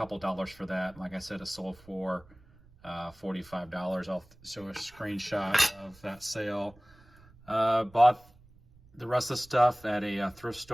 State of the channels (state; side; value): noise; right; rumble, 26 dB below the sound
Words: dollars for that. Like I said, it sold for $45. I'll show a screenshot of that sale. Bought the rest of the stuff at a thrift